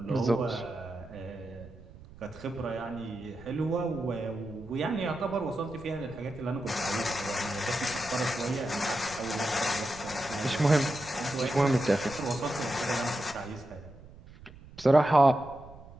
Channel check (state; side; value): noise; right; rumble, 19 dB below the sound